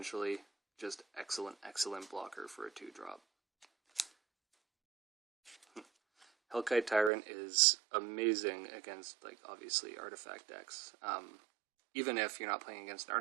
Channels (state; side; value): drops out; left; at 7.1 s